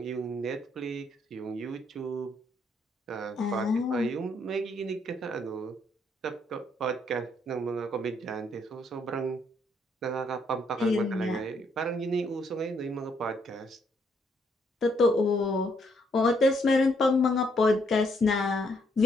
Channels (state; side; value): normal; both; correlation 0.71